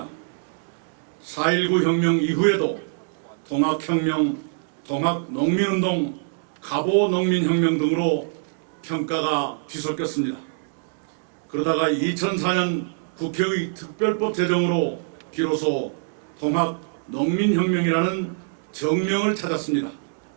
4.19 혁명 이후에도 통학혁명, 통학농민운동, 갑오농민혁명 등으로 평가가 뒤섞였습니다. 그러다가 2004년 국회의 특별법 제정으로 비로소 통합농민혁명이라는 정명을 찾았습니다.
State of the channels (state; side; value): silent; left; digital silence